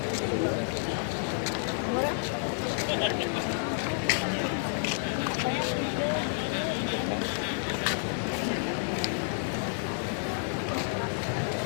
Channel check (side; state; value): right; silent; digital silence